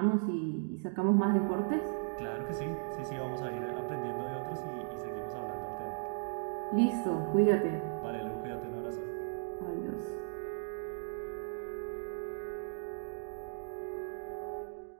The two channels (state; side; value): silent; left; digital silence